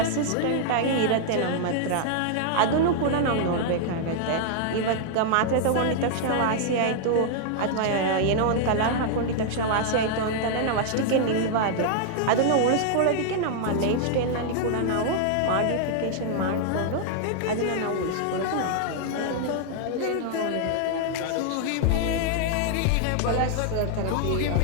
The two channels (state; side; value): different; both; correlation -0.01